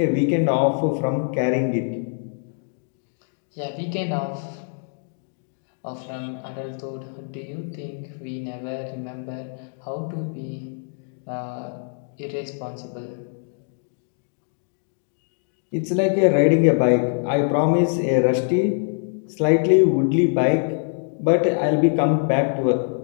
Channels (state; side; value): silent; right; 63 dB below the other